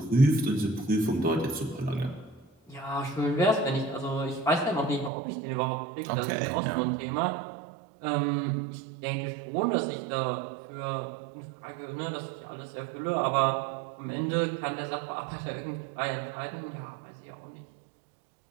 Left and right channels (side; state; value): left; drops out; at 5.1 s